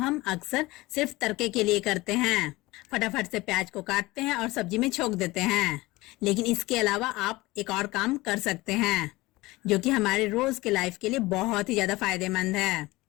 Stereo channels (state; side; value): quieter; right; 20.3 dB